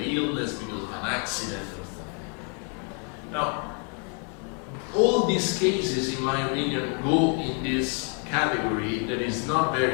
illness, because of an accident or something. Now, all these cases, in my opinion, go in this category that is not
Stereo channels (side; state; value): right; quieter; 39.2 dB